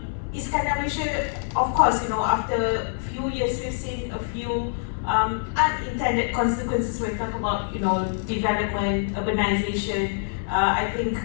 Iskandar Malaysia, of course, after a few years we've seen a few unintended consequences when we talk about development, urbanization. I think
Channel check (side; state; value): right; silent; digital silence